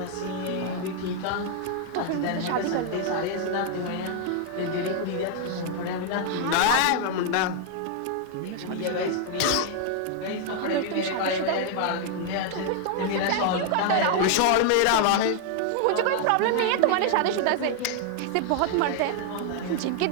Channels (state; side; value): different; both; correlation 0.00